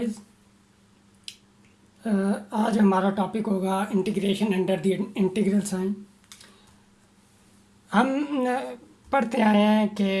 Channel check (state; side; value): identical; both; correlation 1.00